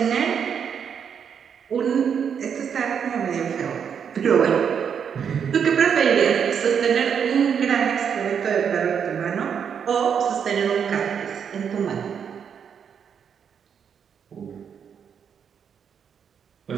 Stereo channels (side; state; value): left; quieter; 7.4 dB